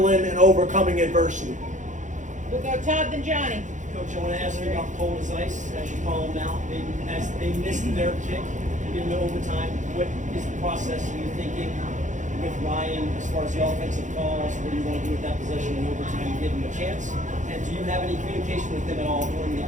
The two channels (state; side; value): late; left; 0.36 ms